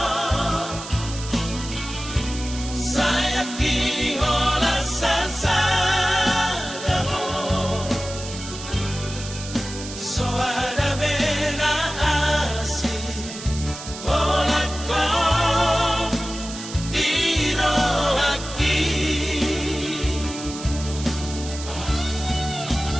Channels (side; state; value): right; noise; hiss, 11 dB below the sound